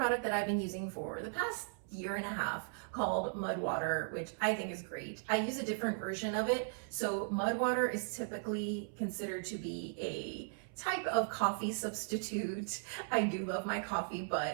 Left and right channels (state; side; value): silent; left; 53 dB below the other